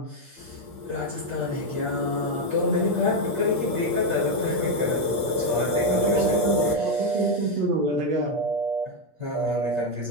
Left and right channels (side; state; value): left; late; 8.5 ms